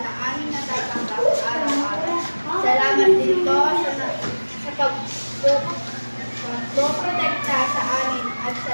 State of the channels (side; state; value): both; inverted; correlation -1.00